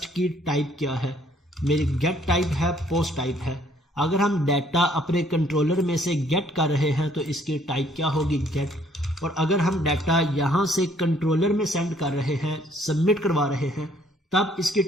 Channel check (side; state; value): both; normal; correlation 0.63